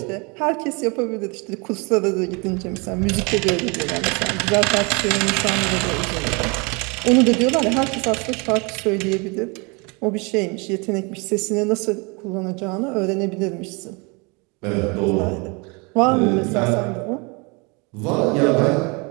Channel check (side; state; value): left; quieter; 30.2 dB